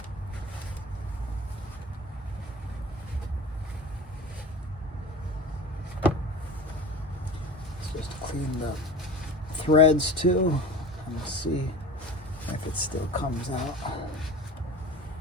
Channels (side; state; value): both; normal; correlation 0.36